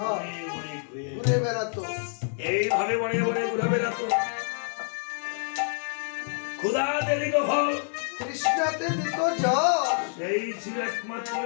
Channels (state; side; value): silent; right; 60 dB below the other